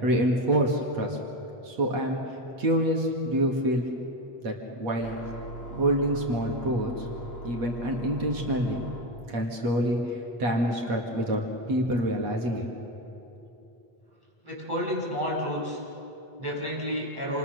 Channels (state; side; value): late; left; 8.3 ms